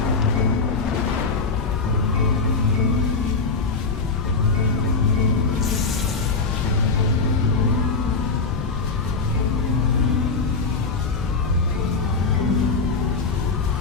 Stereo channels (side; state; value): right; quieter; 4.3 dB